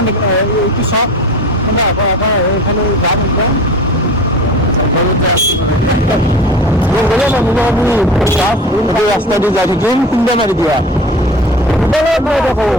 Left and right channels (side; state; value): both; normal; correlation 0.37